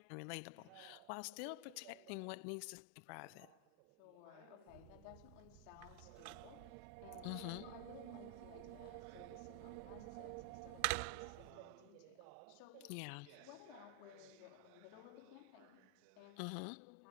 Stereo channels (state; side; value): different; both; correlation 0.00